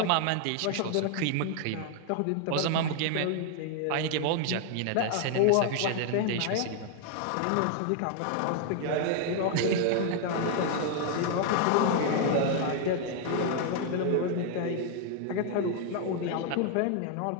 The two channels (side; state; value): both; different; correlation 0.00